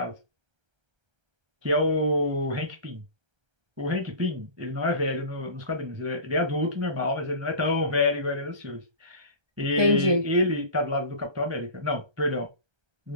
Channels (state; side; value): late; left; 1.3 ms